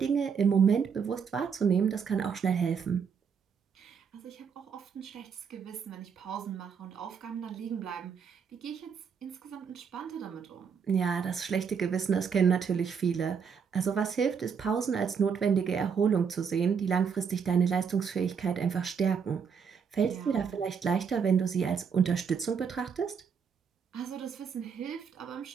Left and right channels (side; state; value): left; quieter; 6.5 dB